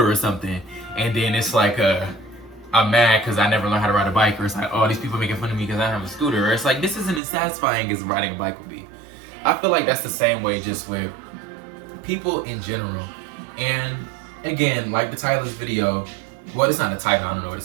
or something, and then it's like I'm mad because I never learned how to ride a bike, or it's like, oh, these people making fun of me because I have a scooter, or it's like, this isn't as satisfying as riding a bike would be. I feel like that's the same way just with people in general. And again, like the title of this video, well, it's not a title, I don't know what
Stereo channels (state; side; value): drops out; left; at 7.2 s